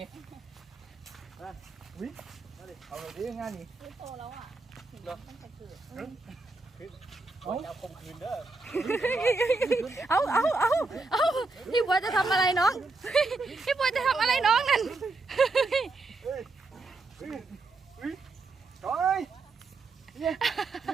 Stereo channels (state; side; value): quieter; left; 3.6 dB